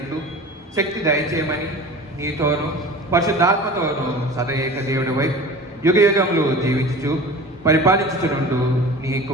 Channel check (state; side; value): normal; both; correlation 0.38